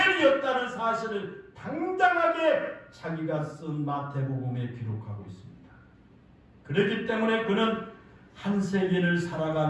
사실을 당당하게 자기가 쓴 마태복음에 기록하고 있습니다. 그렇기 때문에 그는 한 세기를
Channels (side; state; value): both; identical; correlation 1.00